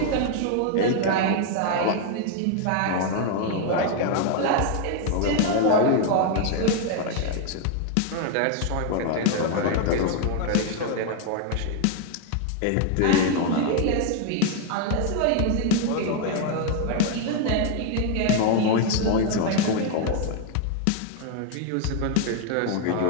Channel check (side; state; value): both; different; correlation 0.00